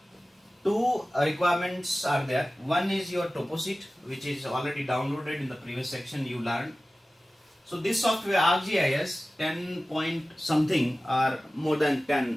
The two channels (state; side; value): normal; both; correlation 0.96